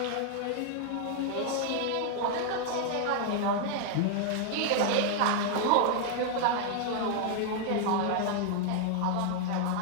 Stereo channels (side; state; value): both; different; correlation 0.00